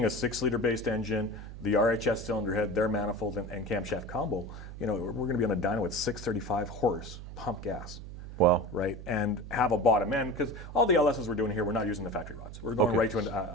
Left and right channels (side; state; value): right; noise; hum, 11 dB below the sound